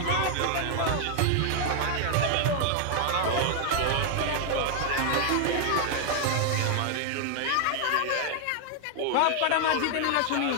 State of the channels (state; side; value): different; both; correlation 0.00